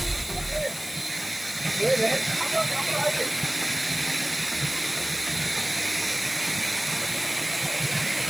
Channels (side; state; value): left; noise; hiss, 12 dB below the sound